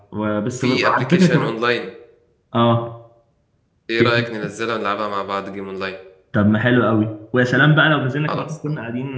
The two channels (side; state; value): both; identical; correlation 1.00